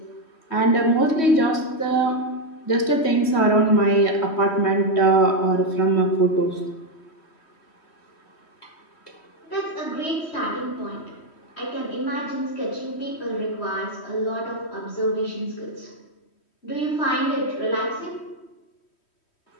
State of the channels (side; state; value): right; late; 3.1 ms